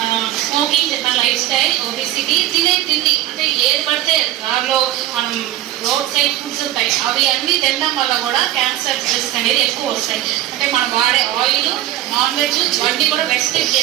స్మోకింగ్ చెప్పిన లైఫ్ స్టైల్, ఒబిసిటీ, తినే తిండి అంటే ఏది పడితే దానిలో మనం రోడ్ సైడ్ ఫుడ్స్ ఉంటాయి, అవి అన్నీ తినడం వల్ల కూడా క్యాన్సర్ రిస్క్ అనేది ఎక్కువ వస్తాయి. అంటే మనం వాడే ఆయిల్, నాన్ వెజ్ ఇవన్నీ కూడా రెస్ట్రిక్ట్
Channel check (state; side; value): quieter; left; 14.1 dB